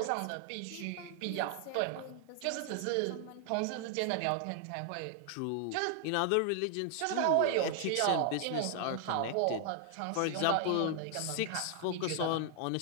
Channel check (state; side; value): different; both; correlation 0.00